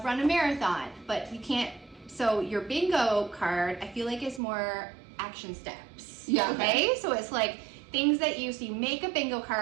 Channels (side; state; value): left; drops out; at 4.4 s